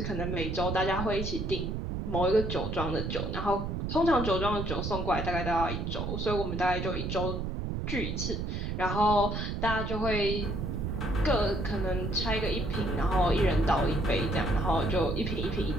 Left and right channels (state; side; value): noise; right; rumble, 2 dB below the sound